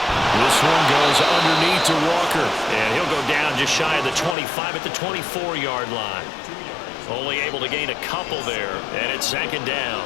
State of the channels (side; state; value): right; drops out; at 4.4 s